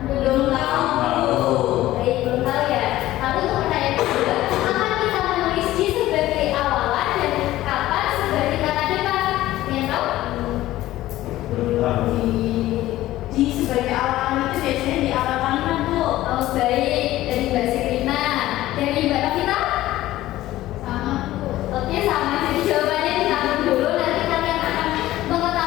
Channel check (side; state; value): right; quieter; 15.5 dB